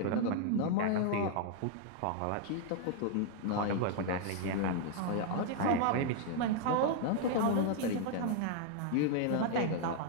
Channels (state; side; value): different; both; correlation 0.00